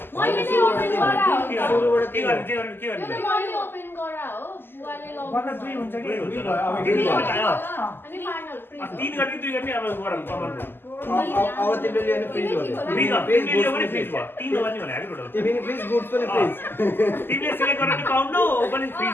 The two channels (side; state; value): right; late; 0.10 ms